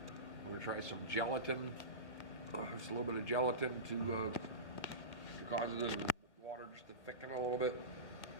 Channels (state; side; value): late; right; 1.9 ms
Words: We're going to try some gelatin, just a little bit of gelatin to cause the water just to thicken a little bit.